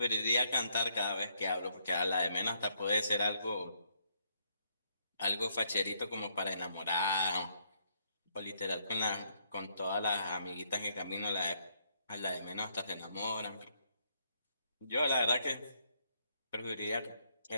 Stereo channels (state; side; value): inverted; both; correlation -0.72